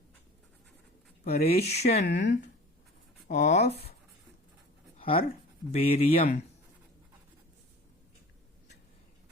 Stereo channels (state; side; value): normal; both; correlation 0.41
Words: Preparation of herbarium